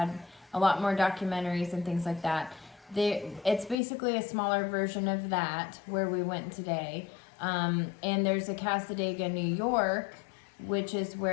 a lot more documentaries and things like that. It's basically a smaller version of that where we went today. And there's a Cassadaga, New York, which is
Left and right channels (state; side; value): drops out; right; at 3.8 s